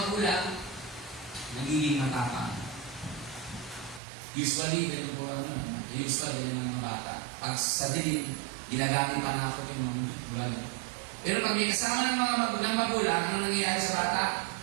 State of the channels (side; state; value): left; drops out; at 4.0 s